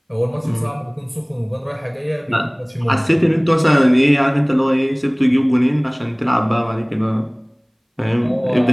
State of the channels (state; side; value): identical; both; correlation 1.00